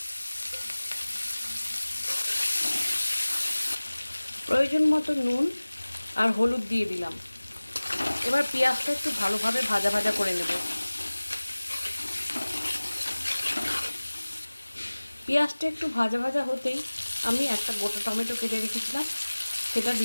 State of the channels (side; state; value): both; inverted; correlation -1.00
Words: প্রয়োজন মতো নুন আর হলুদ দিয়ে দিলাম। এবার পেঁয়াজটা একটু ভালোভাবে ভাজা ভাজা করে নেব। পেঁয়াজটা একটু ভাজা ভাজা হতেই আমি একটা গোটা টমেটো কেটে রেখেছিলাম সেটা